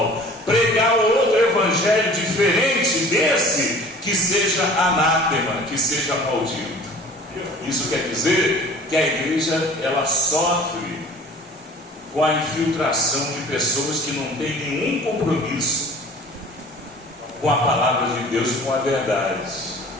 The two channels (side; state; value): both; normal; correlation 0.46